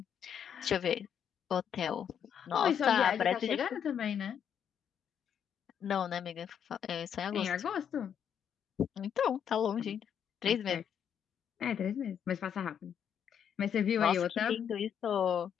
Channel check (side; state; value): right; quieter; 8.4 dB